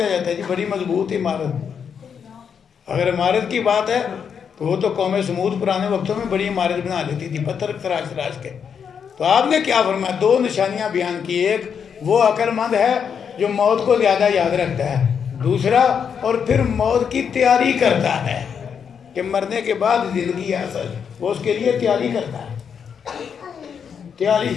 جاتا ہے. جی بڑی مضبوط عمارت. اگر عمارت کی بات ہے تو وہ تو قوم سمود پرانے وقتوں میں بڑی عمارت بنا لیتی تھی، پتھر تراش تراش کے. تو آپ نے کیا فرمایا؟ 2 نشانیاں بیان کی. ایک، وہ عقل مند ہے جو موت کو زیادہ یاد رکھتا ہے. دوسرا، اور پھر موت کی تیاری کرتا ہے کہ مرنے کے بعد زندگی ہے اصل، وہ اس کے لیے تیاری کرتا ہے. تیاری.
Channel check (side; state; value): right; quieter; 7.1 dB